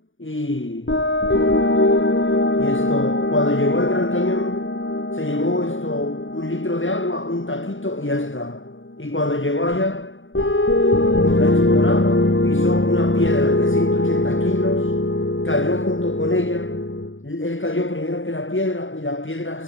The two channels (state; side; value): late; right; 0.57 ms